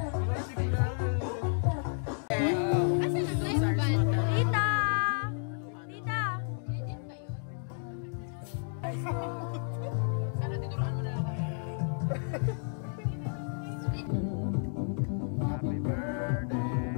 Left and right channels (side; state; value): right; silent; 57 dB below the other